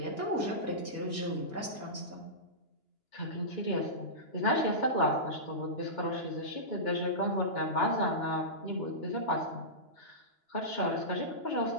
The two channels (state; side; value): late; right; 2.9 ms